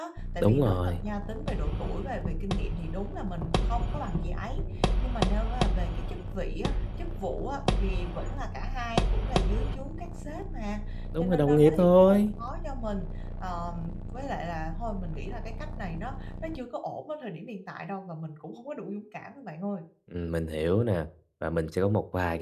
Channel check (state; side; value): identical; both; correlation 1.00